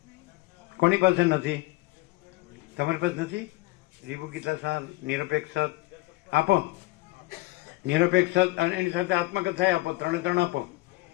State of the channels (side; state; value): right; quieter; 21.2 dB